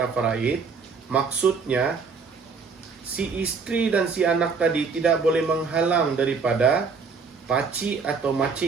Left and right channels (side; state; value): left; quieter; 5.0 dB